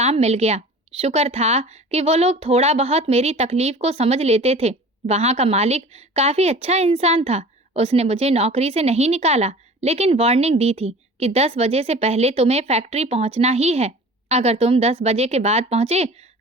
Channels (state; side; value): normal; both; correlation 0.42